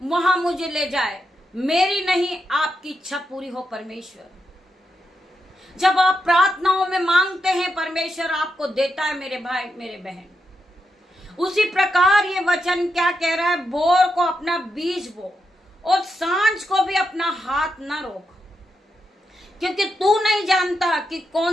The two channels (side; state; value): both; normal; correlation 0.84